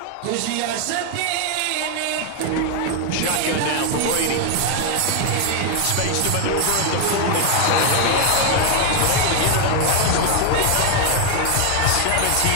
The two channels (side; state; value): both; different; correlation 0.01